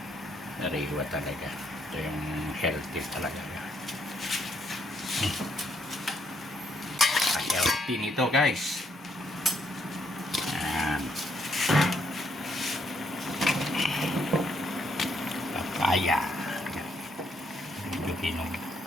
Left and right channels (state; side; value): normal; both; correlation 0.72